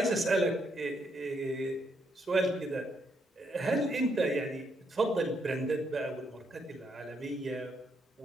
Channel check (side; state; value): both; normal; correlation 0.76